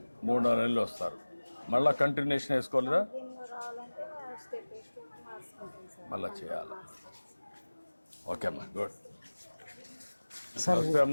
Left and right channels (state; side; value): inverted; both; correlation -1.00